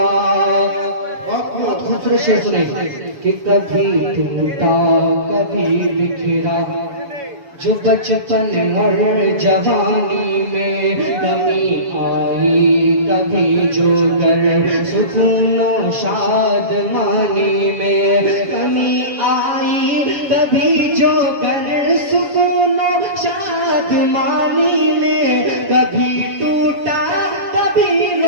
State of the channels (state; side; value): late; left; 7.1 ms